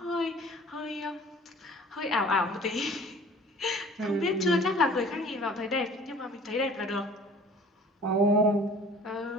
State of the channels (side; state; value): both; normal; correlation 0.48